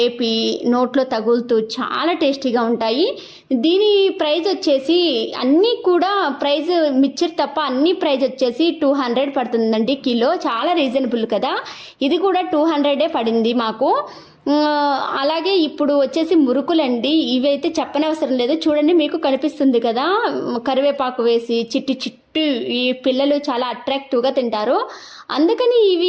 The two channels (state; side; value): identical; both; correlation 1.00